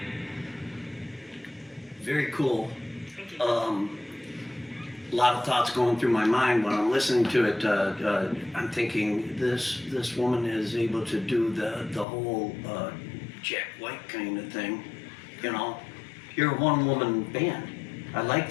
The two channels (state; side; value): drops out; right; at 12.1 s